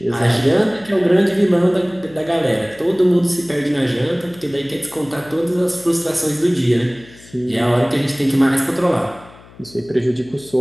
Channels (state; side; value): noise; left; hum, 23 dB below the sound